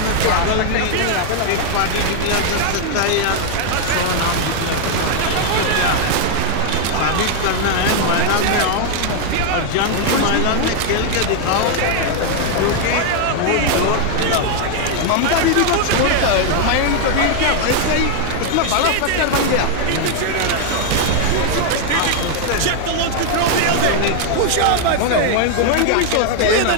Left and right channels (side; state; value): both; different; correlation 0.00